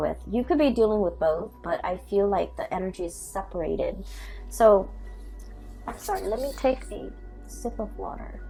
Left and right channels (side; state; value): both; identical; correlation 1.00